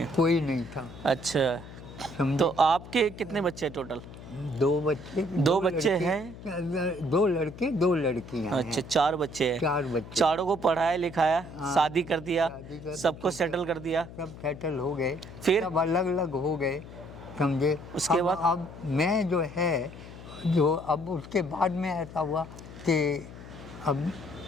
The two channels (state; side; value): noise; left; hum, 15 dB below the sound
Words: कोई नहीं था, अच्छा, समझे। तो आपके कितने बच्चे टोटल? 2 बच्चे। 2 बच्चे हैं? 2 लड़के 2 लड़कियां हैं। अच्छा, 4 बच्चे हैं। 4 बच्चे। चारों को पढ़ाया लिखाया, हाँ। शादी कर दिया, शादी कर- सबको सेटल कर दिया। सब सेटल हो गए, फिर? सब अलग अलग हो गए, समझे। उसके बाद? अब मैं जो है, जो अब उसके बाद में ऐसा हुआ कि अब